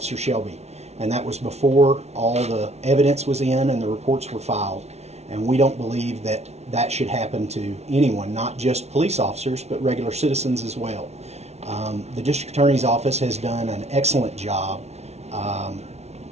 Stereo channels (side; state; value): left; late; 0.31 ms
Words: Shelby. And that was before all the evidence was in and the reports were filed. And we don't believe that that should happen to anyone, not just police officers, but regular citizens as well. The district attorney's office has done an excellent job